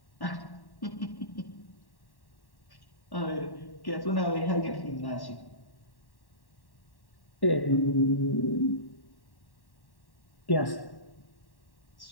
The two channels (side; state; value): right; late; 1.1 ms